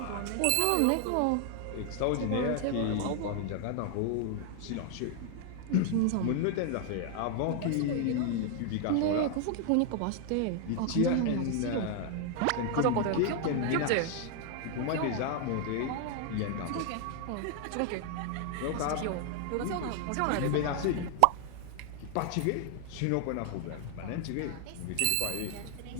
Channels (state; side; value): different; both; correlation 0.00